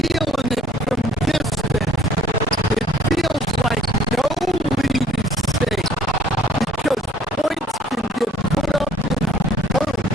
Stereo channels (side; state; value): both; normal; correlation 0.57